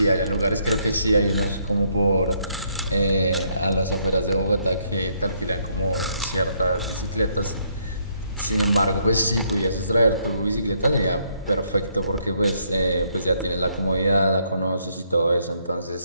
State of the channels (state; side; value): inverted; both; correlation -0.72